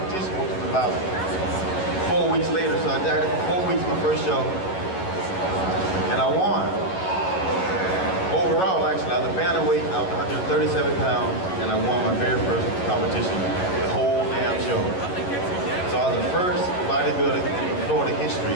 which was about 4 weeks later. So I dieted for 4 weeks my first show, and I won. Overall, actually, I was a bantamweight. I was 137 pounds, and I won my very first competition. The whole damn show. So I was the first bodybuilder in Florida history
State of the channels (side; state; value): right; late; 11 ms